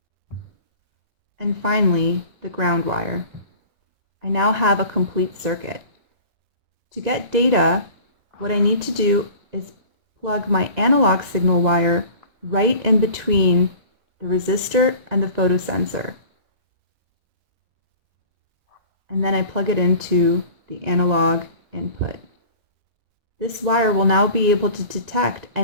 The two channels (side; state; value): left; late; 2.0 ms